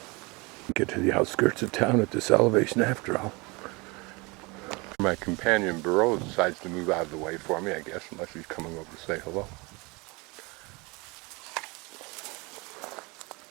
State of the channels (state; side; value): quieter; left; 26.7 dB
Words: Get to the outskirts of town at this elevation after all. My companion Burrow decides to move out of the way for me, I guess, unless he's coming over to say hello.